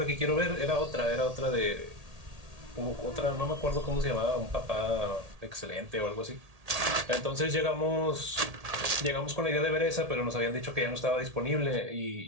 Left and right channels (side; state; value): left; late; 1.8 ms